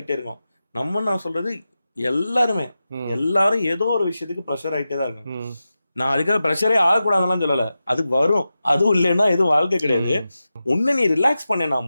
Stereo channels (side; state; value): both; inverted; correlation -0.92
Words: இருக்கோம். நான் சொல்றது எல்லாரும் ஏதோ ஒரு விஷயத்துக்கு ப்ரெஷர் ஆயிட்டே தான் இருக்கும். நான் அதுக்காக ப்ரெஷரே ஆகக்கூடாதுலாம் சொல்லல, அது வரும். அதுவும் இல்லைன்னா எதுவும் வாழ்க்கை கிடையாது. ஒண்ணு நீ ரிலாக்ஸ் பண்ணா